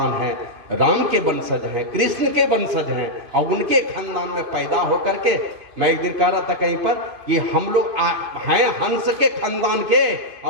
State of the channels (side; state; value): left; late; 2.7 ms